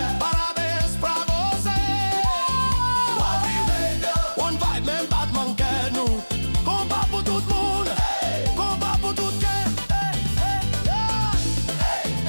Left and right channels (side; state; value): both; inverted; correlation -1.00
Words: Parabéns pra você. One vibe, même Batman quer nous. Combat pour tout le monde, combat pour tout le monde.